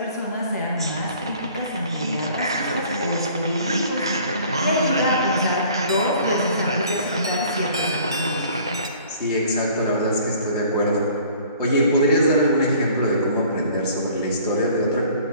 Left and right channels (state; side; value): inverted; both; correlation -0.52